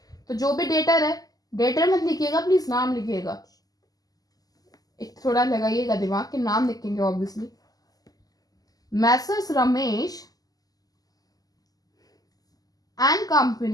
तो जो भी डेटर है, डेटर मत लिखिएगा प्लीज, नाम लिखिएगा. एक थोड़ा लगाइएगा दिमाग के, नाम लिखेंगे obviously. Messrs Ramesh and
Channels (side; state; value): right; late; 0.18 ms